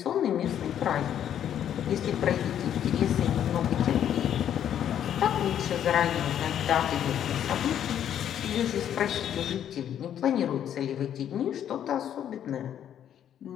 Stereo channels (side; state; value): right; quieter; 10.0 dB